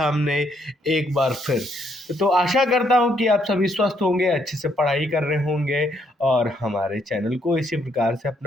एक बार फिर। तो आशा करता हूं कि आप सभी स्वस्थ होंगे, अच्छे से पढ़ाई कर रहे होंगे और हमारे चैनल को इसी प्रकार से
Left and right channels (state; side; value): normal; both; correlation 0.72